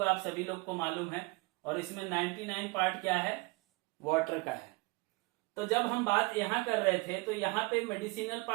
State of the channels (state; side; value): quieter; left; 26.1 dB